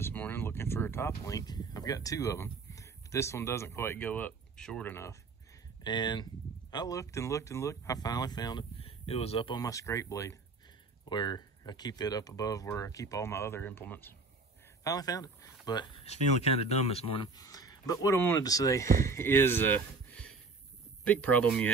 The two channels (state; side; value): quieter; left; 4.0 dB